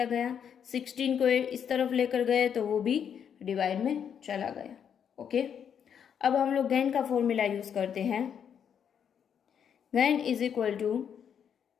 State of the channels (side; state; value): right; quieter; 8.1 dB